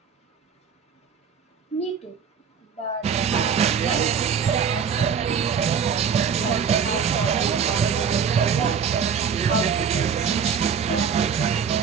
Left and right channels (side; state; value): left; quieter; 6.8 dB